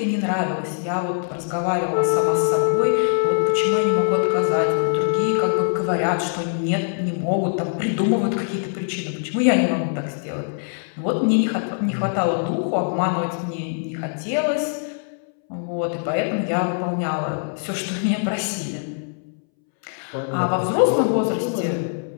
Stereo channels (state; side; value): silent; right; 64 dB below the other